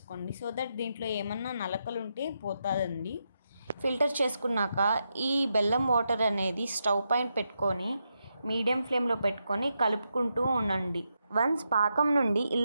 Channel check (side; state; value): both; inverted; correlation -0.84